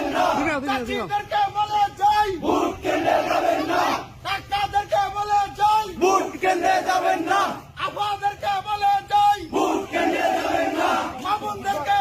না, চাচিদেরকে বলে যাই ভোট কেন্দ্রে যাবেন না, কাকাদেরকে বলে যাই ভোট কেন্দ্রে যাবেন না, আফওয়াদেরকে বলে যাই ভোট কেন্দ্রে যাবেন না, মামুনদেরকে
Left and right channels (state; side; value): identical; both; correlation 1.00